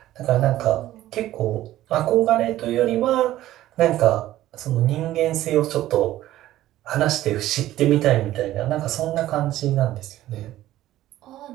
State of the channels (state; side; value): quieter; left; 14.4 dB